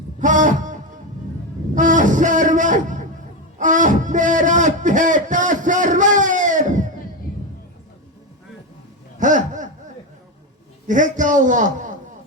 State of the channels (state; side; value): normal; both; correlation 0.14